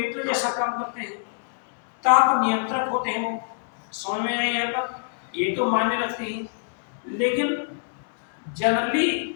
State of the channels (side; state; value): right; silent; digital silence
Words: जैसा काम करते हैं, ताप नियंत्रक होते हैं वो। समझ में आया यहाँ पर? ये तो मायने रखते हैं, लेकिन